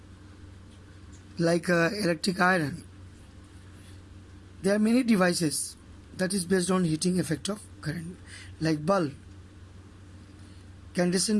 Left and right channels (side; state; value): both; identical; correlation 1.00